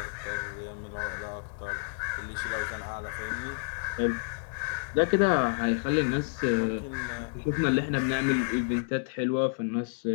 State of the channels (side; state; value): right; silent; digital silence